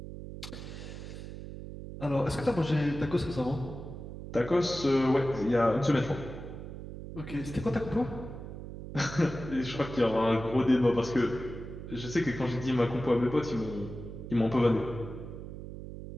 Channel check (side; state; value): right; noise; hum, 10 dB below the sound